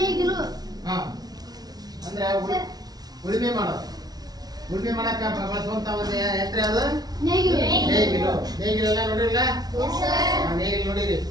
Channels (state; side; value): late; left; 0.19 ms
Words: ನೇಗಿಲು. ಅಂದ್ರೆ ಉಳುಮೆ ಮಾಡಕ್ಕ ಬಳಸುವಂತ ಒಂದು ಯಂತ್ರ ಅದು ನೇಗಿಲು ಎಲ್ಲ ನೋಡಿರಲ್ಲ? ನೇಗಿಲು ನೋಡಿರಿ,